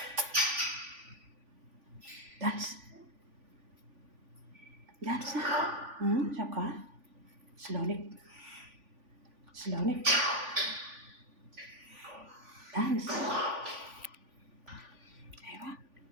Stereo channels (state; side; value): late; left; 3.5 ms